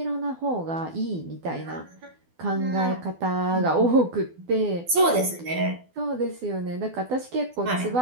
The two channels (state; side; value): late; left; 12 ms